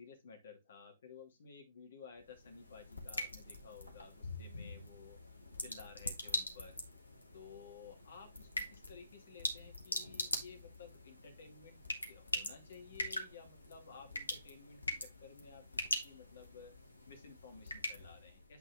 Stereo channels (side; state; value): both; inverted; correlation -0.80